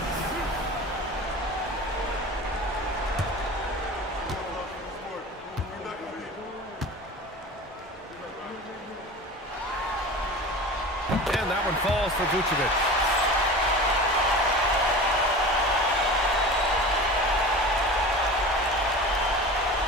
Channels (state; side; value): normal; both; correlation 0.34